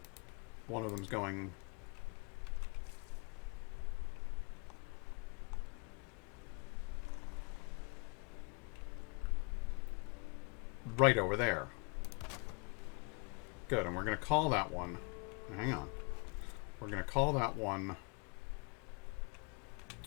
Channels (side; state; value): right; quieter; 32.7 dB